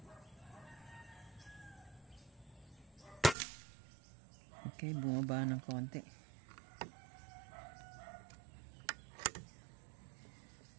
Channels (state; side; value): drops out; left; at 3.4 s